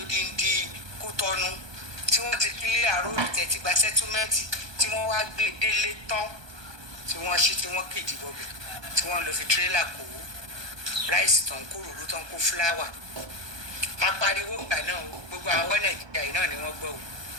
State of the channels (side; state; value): left; late; 1.2 ms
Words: Kútọ́nù tí wọ́n ti kílé àròrò tẹ̀tí gba sẹ́túmẹ́ǹtì tí wọ́n wá gbé délé tán tí wọ́n ṣí tí wọ́n kéjì bọ̀bẹ̀ tí wọ́n lọ fi tírélà kó ráìsì tán kó ròró tán kó fúláwà apariwo ìgbà náà gbogbo àwọn Nàìjíríà yìí náà ni wọ́n gbọ́ o